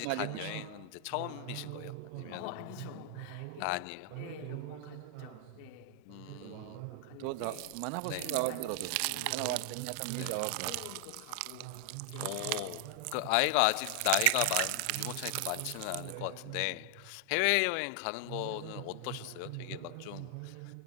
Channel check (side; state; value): both; different; correlation 0.00